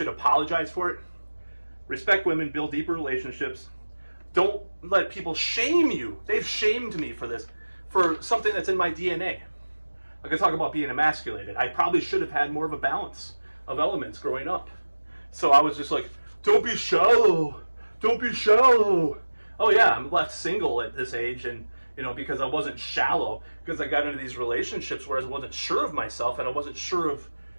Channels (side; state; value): both; inverted; correlation -1.00